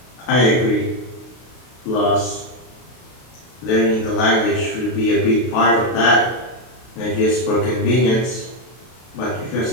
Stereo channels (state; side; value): late; right; 32 ms